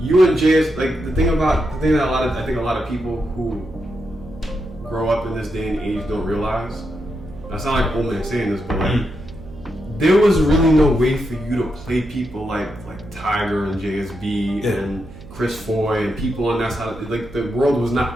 and JS. Like the thing that I think a lot of people who grow up in this day and age don't realize. I sound like old man saying this, but like there was really no way for you to play people like Tiger and JSB and Chris Foy and people on that side. Like the world was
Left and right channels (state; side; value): noise; right; hum, 17 dB below the sound